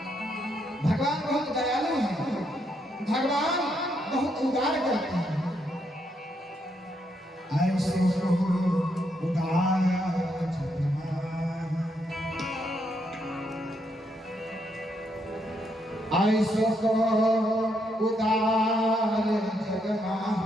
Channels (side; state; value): both; normal; correlation 0.77